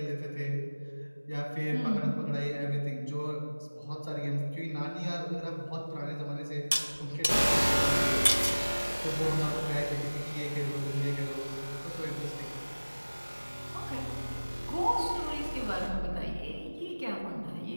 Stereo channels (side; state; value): both; inverted; correlation -1.00